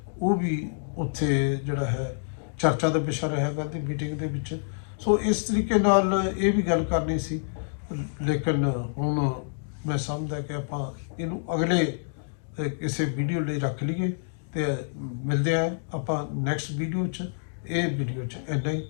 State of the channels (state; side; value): silent; right; digital silence